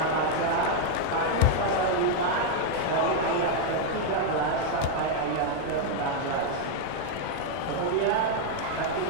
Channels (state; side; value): different; both; correlation 0.00